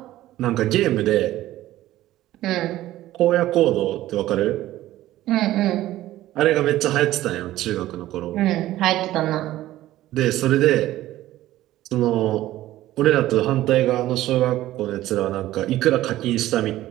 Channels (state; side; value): quieter; left; 14.9 dB